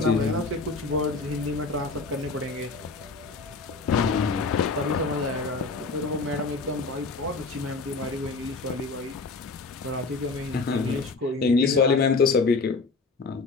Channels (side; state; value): right; quieter; 4.0 dB